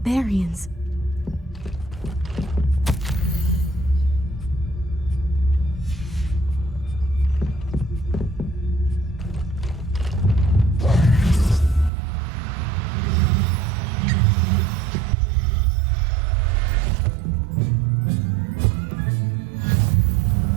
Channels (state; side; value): drops out; left; at 11.9 s